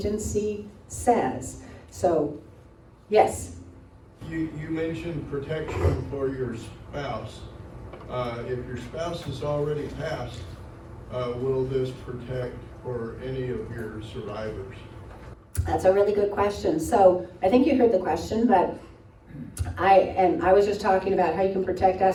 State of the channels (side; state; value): both; identical; correlation 1.00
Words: says. So, yes? You mentioned protection for your spouse. If your spouse has already passed, will this protect for any of your survivors? That's a really good question. So I think you heard the question, but I was just talking about how you can protect